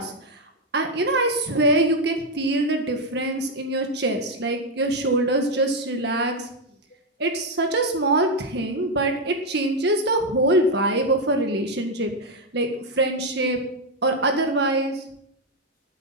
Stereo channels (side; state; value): both; normal; correlation 0.04